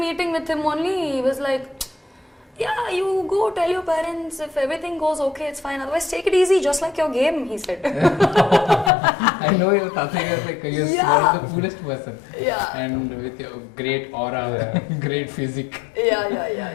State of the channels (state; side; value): drops out; right; at 8.9 s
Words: meeting with him only, he was like, yeah, you go tell your parents if everything goes okay, it's fine, otherwise take it easy, just like your game, he said. I know your Tataya is like, you're one of the coolest person. Yeah. And with your great aura, great physique.